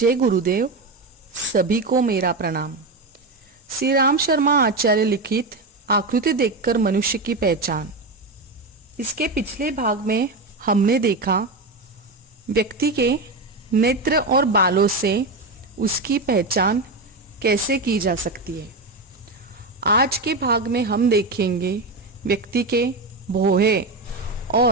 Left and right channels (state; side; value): quieter; left; 3.2 dB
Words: गुरुदेव। सभी को मेरा प्रणाम। श्री राम शर्मा आचार्य लिखित आकृति देखकर मनुष्य की पहचान। इसके पिछले भाग में हमने देखा व्यक्ति के नेत्र और बालों से उसकी पहचान कैसे की जा सकती है। आज के भाग में हम देखेंगे व्यक्ति के भौहें